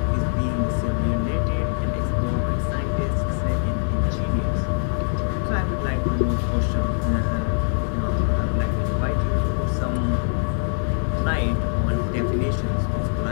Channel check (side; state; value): right; silent; digital silence